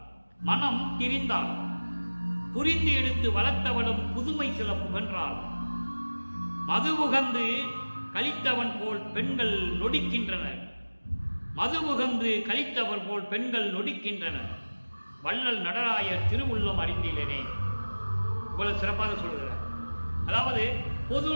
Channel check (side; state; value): both; inverted; correlation -1.00